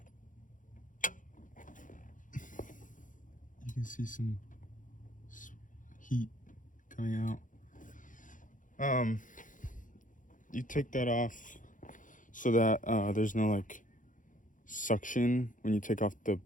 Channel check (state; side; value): late; right; 0.38 ms